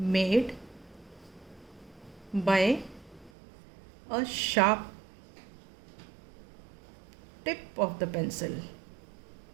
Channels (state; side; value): drops out; left; at 3.3 s